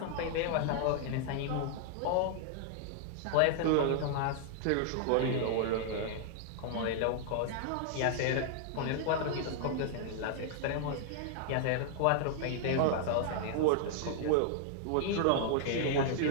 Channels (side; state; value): both; different; correlation -0.01